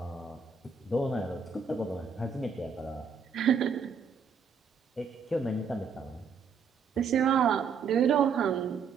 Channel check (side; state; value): left; quieter; 5.9 dB